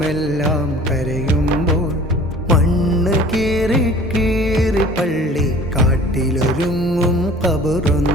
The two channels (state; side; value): normal; both; correlation 0.47